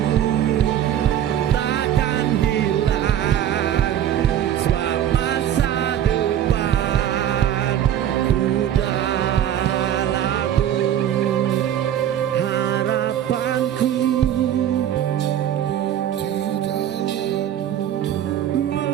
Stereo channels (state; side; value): quieter; left; 10.7 dB